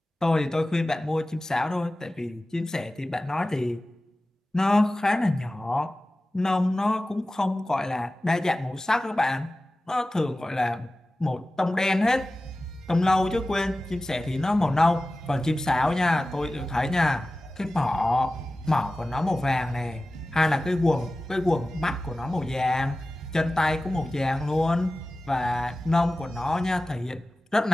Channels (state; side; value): normal; both; correlation 0.96